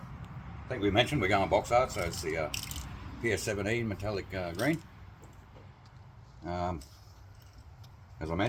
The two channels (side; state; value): both; identical; correlation 1.00